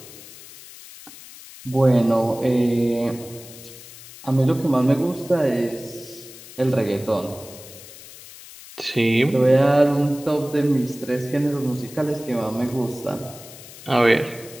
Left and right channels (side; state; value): left; noise; hiss, 17 dB below the sound